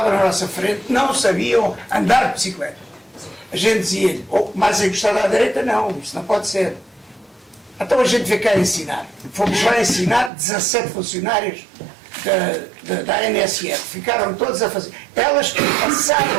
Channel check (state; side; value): drops out; left; at 10.3 s